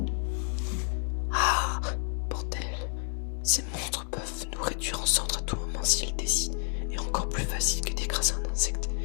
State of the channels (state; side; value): silent; right; 58 dB below the other